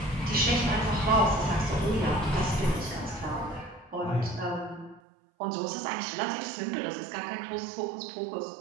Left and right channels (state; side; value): drops out; left; at 5.0 s